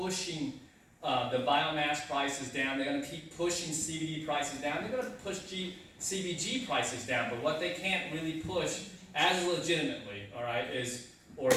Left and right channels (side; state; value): both; identical; correlation 1.00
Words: the biomass prices down. They're going to keep pushing CBD prices down. They're going to push CBG prices down, but what they can't really push as legitimately, all right, is